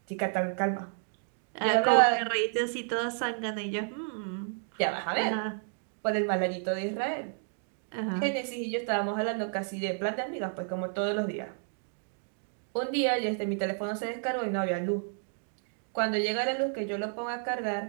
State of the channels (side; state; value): left; silent; 57 dB below the other